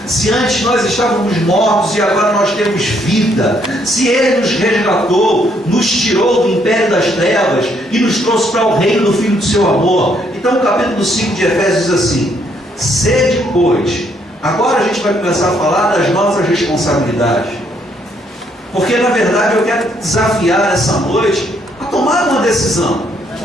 se antes nós estávamos mortos e agora nós temos vida, se Ele nos resgatou, nos tirou do império das trevas e nos trouxe para o reino do Filho do seu amor. Então o capítulo 5 de Efésios diz assim: sede, pois. Agora a gente vai começar a falar das nossas responsabilidades, porque na verdade eu quero desafiar essa noite a tomar uma decisão.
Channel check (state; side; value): normal; both; correlation 0.70